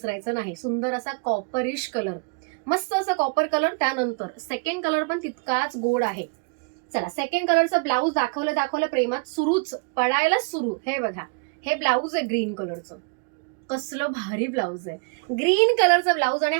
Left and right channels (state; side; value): quieter; left; 34.2 dB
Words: नाही. सुंदर असा कॉपरिश कलर, मस्त असा कॉपर कलर. त्यानंतर सेकंड कलर पण तितकाच गोड आहे. चला सेकंड कलरचा ब्लाऊज दाखवलं प्रेमात सुरूच पडायला सुरू. हे बघा, हे ब्लाऊज आहे ग्रीन कलरचं. कसलं भारी ब्लाऊज आहे. ग्रीन कलरचा ब्लाऊज आणि